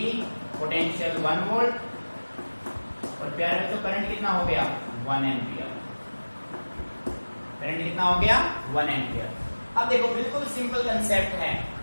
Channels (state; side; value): inverted; both; correlation -1.00